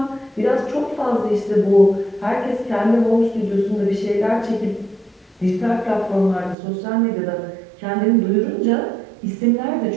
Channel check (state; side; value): drops out; left; at 6.6 s